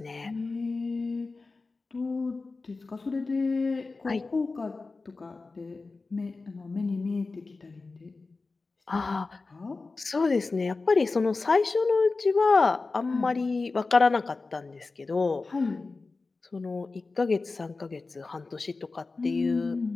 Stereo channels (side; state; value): right; quieter; 3.8 dB